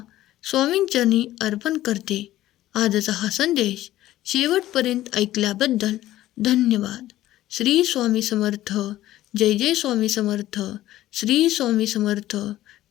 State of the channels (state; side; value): quieter; right; 14.6 dB